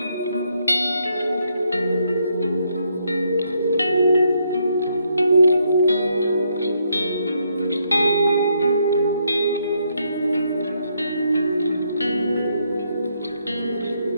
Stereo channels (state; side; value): inverted; both; correlation -0.75